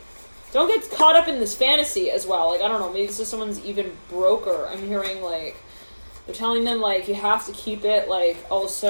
get caught up in this fantasy as well. Like, I don't know, maybe this is someone's even broker. I'm hearing like they're telling them like you have to keep it like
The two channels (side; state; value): both; inverted; correlation -1.00